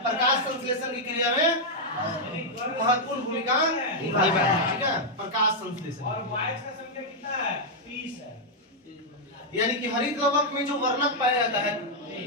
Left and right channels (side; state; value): both; normal; correlation -0.03